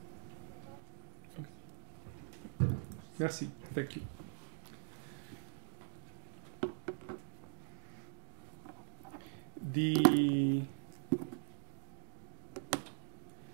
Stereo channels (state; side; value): silent; left; digital silence